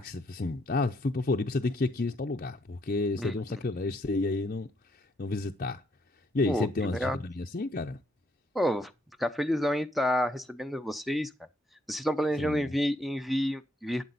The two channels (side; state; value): both; normal; correlation 0.72